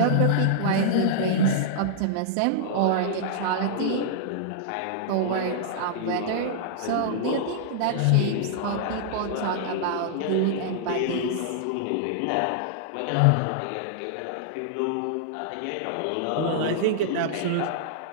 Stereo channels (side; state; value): both; different; correlation -0.01